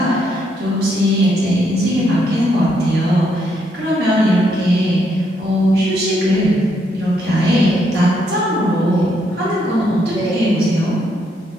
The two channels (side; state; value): both; normal; correlation 0.75